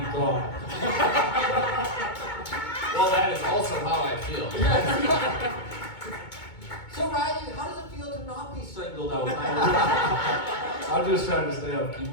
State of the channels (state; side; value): late; right; 2.2 ms